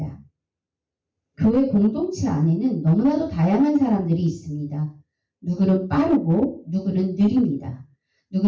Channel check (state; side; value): identical; both; correlation 1.00